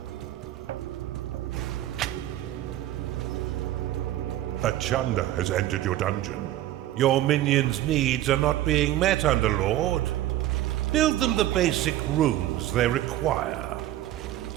A Chanda has entered your dungeon. Your minions' needs are not being met, Underlord. Build them the basic rooms they require.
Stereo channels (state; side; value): quieter; left; 13.9 dB